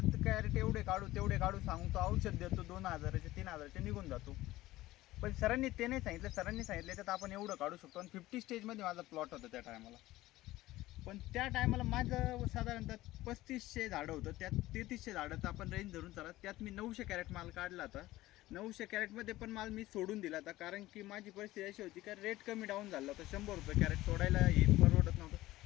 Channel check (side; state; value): right; quieter; 16.9 dB